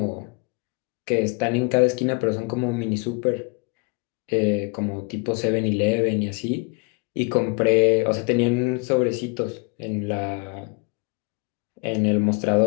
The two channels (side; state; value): right; quieter; 31.9 dB